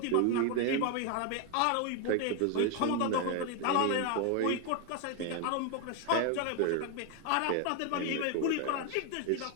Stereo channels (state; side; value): different; both; correlation 0.01